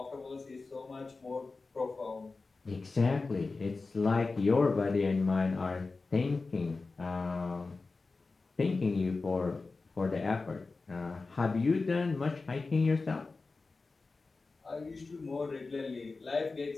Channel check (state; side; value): quieter; right; 3.9 dB